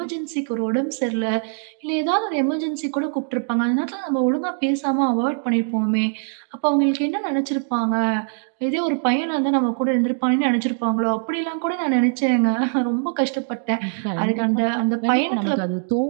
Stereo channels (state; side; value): silent; left; 62 dB below the other